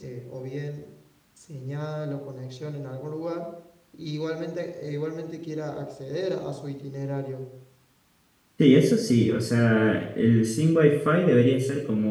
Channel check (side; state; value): both; identical; correlation 1.00